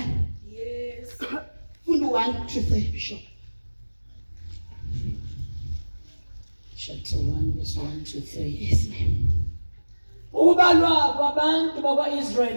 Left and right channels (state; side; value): inverted; both; correlation -1.00